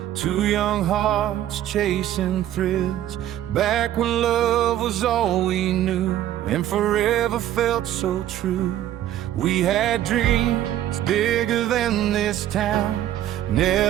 two young hearts chasing thrills, back when love was all we knew and forever felt so true. We had dreams bigger than this town,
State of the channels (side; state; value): left; quieter; 12.3 dB